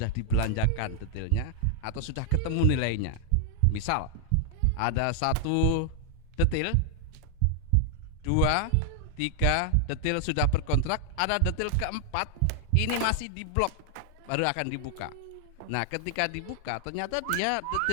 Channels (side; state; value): both; different; correlation 0.00